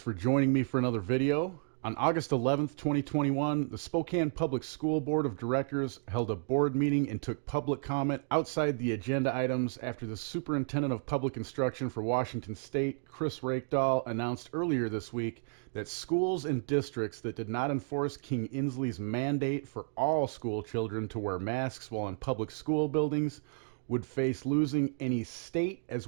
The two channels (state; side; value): silent; left; digital silence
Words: joining me for another video. On August 11th, 2021, the Spokane Public School Board of Directors held a board meeting and took public comment outside the agenda items after the Superintendent of Public Instruction for Washington State, Chris Rakedahl, announced earlier this week that schools and districts that did not enforce King Inslee's mandate for all school children to wear masks while in public school buildings would face losing any state as